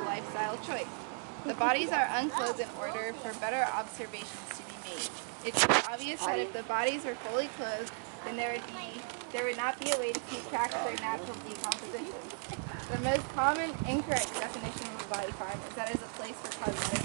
lifestyle choice. The bodies are unclothed in order for better observations to be made. It should be obvious that if the bodies were fully clothed, then there would not be a way to keep track of their natural decomposition. The most common incorrect definition of a body farm is that it is a place for cosmetic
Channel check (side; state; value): left; silent; 54 dB below the other